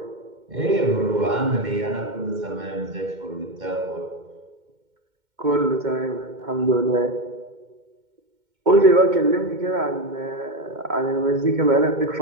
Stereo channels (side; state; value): left; late; 2.1 ms